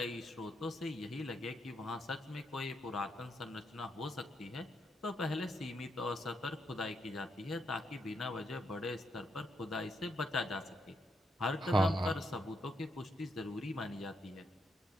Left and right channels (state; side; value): normal; both; correlation 0.79